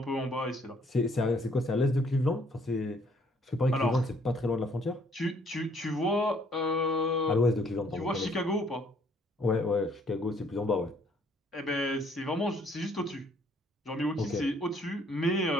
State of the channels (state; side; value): normal; both; correlation 0.64